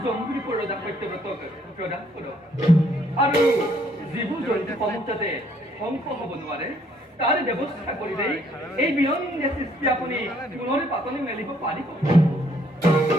জম্বু দ্বীপৰ ৰজা সত্যব্ৰতক প্ৰদান কৰক আৰু যিবোৰ জন্তুসমূহ যাতে ধ্বংস হ'ব নোৱাৰে তাৰ ব্যৱস্থা কৰিলে এই বিনন্দীয় সৃষ্টি আপুনি পুনৰ পাতনি মেলিব পাৰিব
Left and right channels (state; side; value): normal; both; correlation 0.66